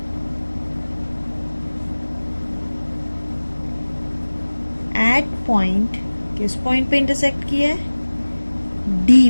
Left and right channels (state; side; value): inverted; both; correlation -1.00